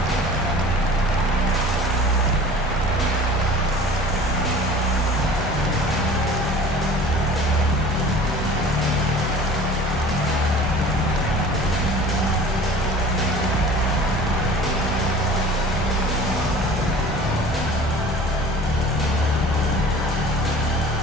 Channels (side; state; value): both; normal; correlation 0.43